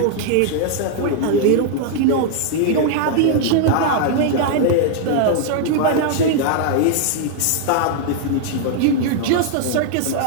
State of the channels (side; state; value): both; different; correlation -0.01